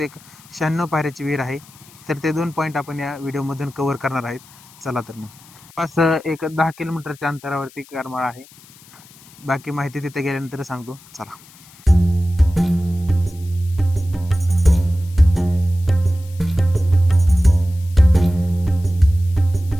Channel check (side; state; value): left; noise; hiss, 24 dB below the sound